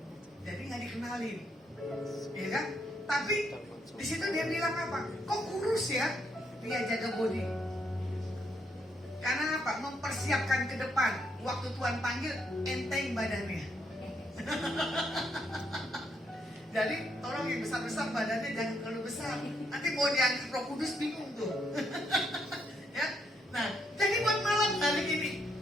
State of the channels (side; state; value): both; normal; correlation 0.76